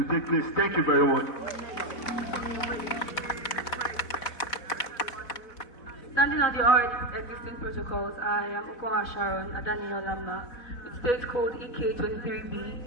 take place. Thank you very much. Standing on the already existing protocols, I am Okoma Sharon Adaniel Lama with state code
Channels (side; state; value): right; late; 4.1 ms